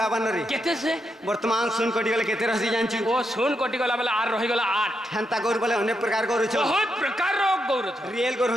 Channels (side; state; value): both; normal; correlation 0.82